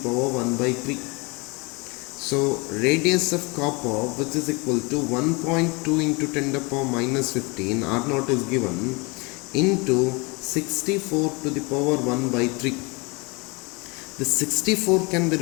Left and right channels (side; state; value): right; quieter; 28.1 dB